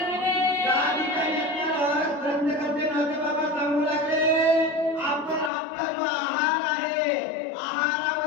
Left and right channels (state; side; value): drops out; right; at 5.5 s